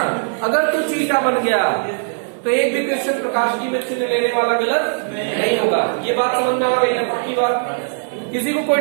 अगर तू चीटा बन गया तो एक भी क्वेश्चन प्रकाश की में चिन्ह लेने वाला गलत नहीं होगा। ये बात समझ में आ गई ना? पक्की बात? किसी को कोई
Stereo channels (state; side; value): silent; left; 67 dB below the other